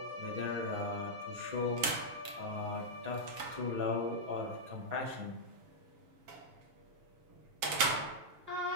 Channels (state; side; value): late; left; 7.2 ms